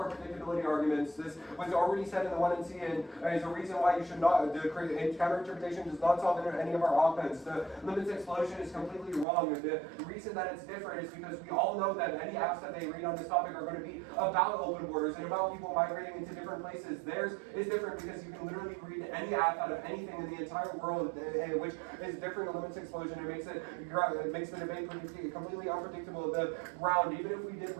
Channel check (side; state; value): left; drops out; at 9.2 s